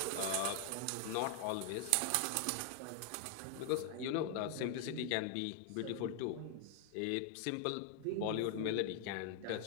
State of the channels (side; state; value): both; different; correlation 0.00